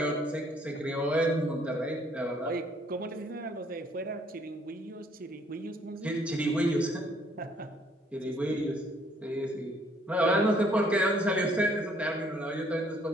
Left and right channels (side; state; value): both; normal; correlation 0.64